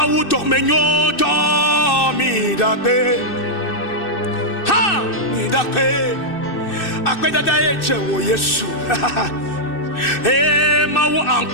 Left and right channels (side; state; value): right; late; 2.6 ms